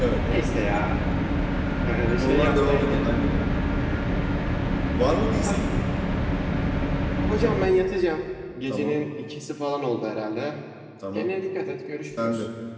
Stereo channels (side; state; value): both; identical; correlation 1.00